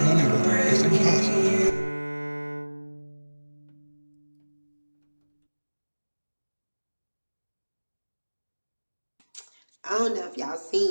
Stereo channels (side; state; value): both; inverted; correlation -1.00